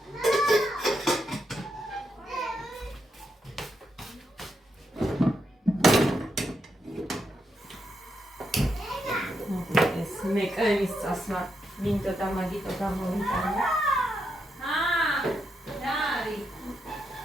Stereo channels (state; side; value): normal; both; correlation 0.82